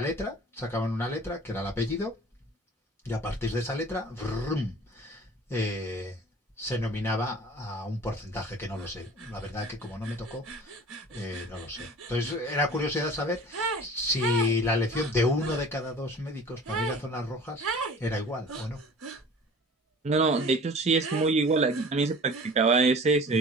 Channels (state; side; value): normal; both; correlation 0.44